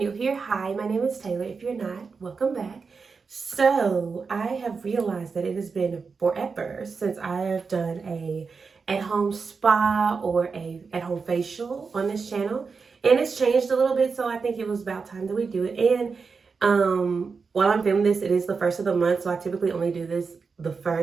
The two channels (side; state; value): left; quieter; 5.0 dB